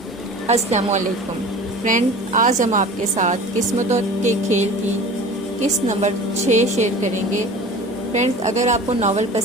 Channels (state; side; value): normal; both; correlation 0.40